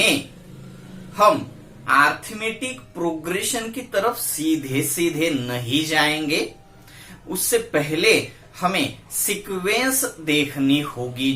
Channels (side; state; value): both; identical; correlation 1.00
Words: हम अरिथमेटिक प्रोग्रेशन की तरफ सीधे सीधे नहीं जाएंगे। उससे पहले हमें सीक्वेंस देखनी होगी,